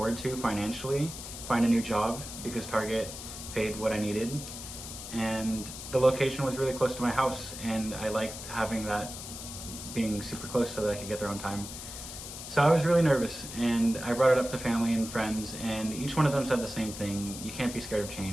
to financially find a new job because Target paid what I needed, and the location was really close to my house, and I liked having that being super close so that I could get there on time. So I was really nervous, and I brought it up to family and friends, and each one of them said the same thing. You can't be scared of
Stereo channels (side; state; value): left; noise; hiss, 10 dB below the sound